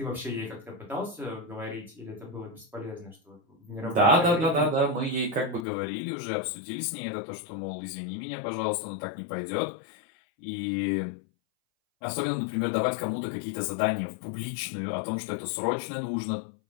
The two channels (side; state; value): right; drops out; at 5.7 s